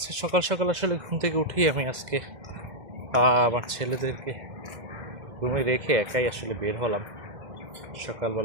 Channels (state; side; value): late; left; 2.0 ms